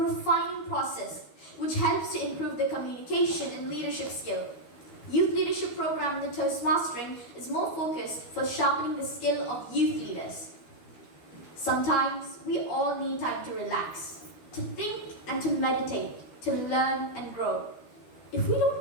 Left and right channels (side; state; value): right; late; 12 ms